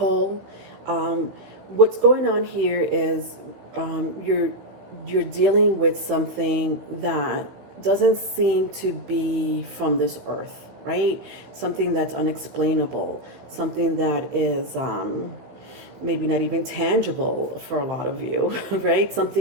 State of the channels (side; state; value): left; late; 16 ms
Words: What's going on here is you're dealing with something that doesn't seem to be from this earth, right? Something that's unexplainable, something that is maybe not even tangible for a lot of you, right?